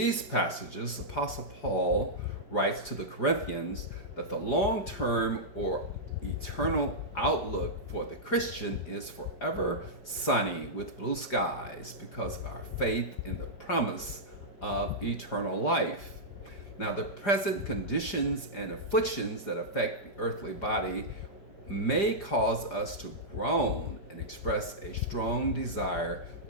passages, Apostle Paul writes to the Corinthians that the long-term or eternal outlook for the Christian is forever sunny with blue skies because of our faith in the promise of eternal life. Now, the present conditions and afflictions that affect the earthly body may cause us to groan and express a strong desire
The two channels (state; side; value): late; right; 5.0 ms